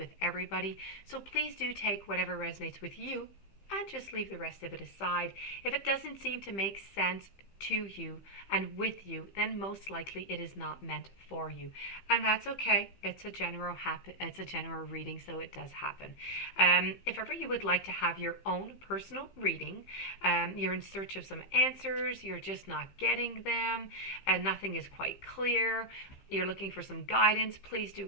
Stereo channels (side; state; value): right; late; 15 ms